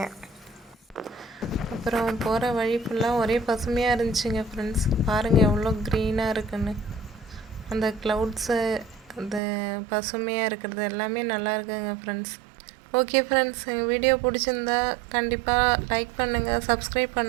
அப்புறம் போகிற வழி ஃபுல்லாக ஒரே பசுமையாக இருந்துச்சுங்க ஃப்ரெண்ட்ஸ். பாருங்கள் எவ்வளோ க்ரீனாக இருக்குன்னு. அந்த க்ளவுட்ஸு, அந்த பசுமையாக இருக்கிறது எல்லாமே நல்லா இருக்குங்க ஃப்ரெண்ட்ஸ். ஓகே ஃப்ரெண்ட்ஸ், எங்கள் வீடியோ பிடிச்சிருந்தா கண்டிப்பாக லைக் பண்ணுங்கள், சப்ஸ்கிரைப்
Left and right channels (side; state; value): left; drops out; at 9.4 s